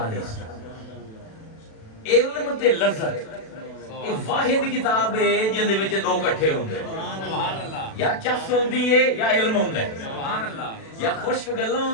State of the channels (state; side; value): late; right; 37 ms